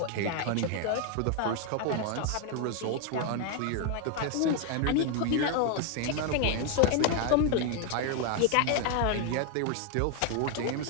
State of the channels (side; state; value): both; different; correlation 0.01